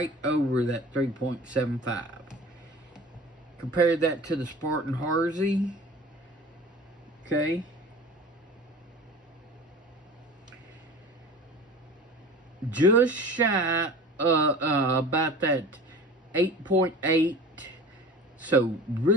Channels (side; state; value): both; normal; correlation 0.39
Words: over that 3.75. Compare that to the Spartan Harvey. Okay. Just shy about that 8.8. So